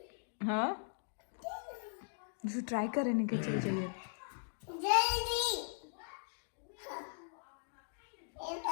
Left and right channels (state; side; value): silent; right; digital silence